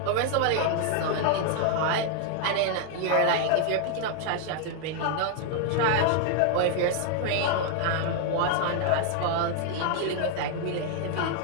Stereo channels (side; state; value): both; different; correlation 0.00